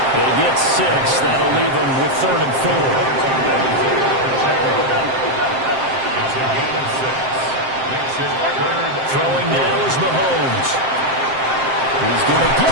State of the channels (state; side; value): late; left; 7.6 ms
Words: They get 6. That'll leave them with third and 4. Throwing now is Mahomes. He's going to